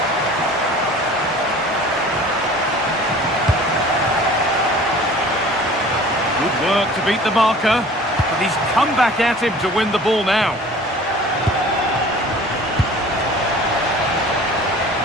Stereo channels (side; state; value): both; normal; correlation 0.45